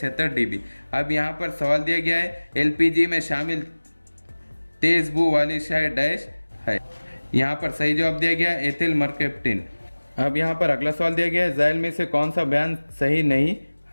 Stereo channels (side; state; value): both; inverted; correlation -1.00